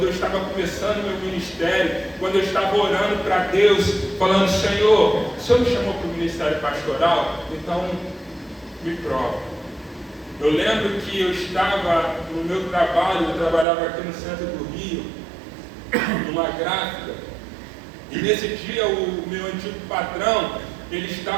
eu estava começando meu ministério, quando eu estava orando para Deus, falando: Senhor, o Senhor me chamou para o ministério pastoral, então me prova. Eu lembro que eu estava no meu trabalho, eu trabalhava aqui no centro do Rio, numa gráfica, e nesse dia o meu antigo patrão, ele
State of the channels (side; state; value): left; drops out; at 13.7 s